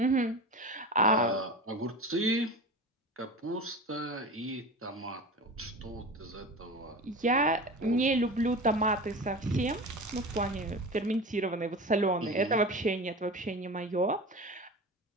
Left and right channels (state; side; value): normal; both; correlation 0.30